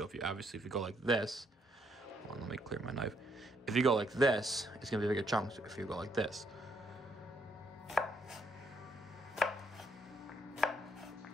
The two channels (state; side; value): normal; both; correlation 0.73